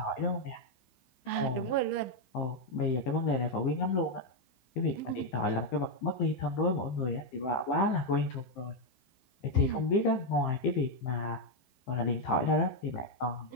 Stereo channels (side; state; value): right; late; 15 ms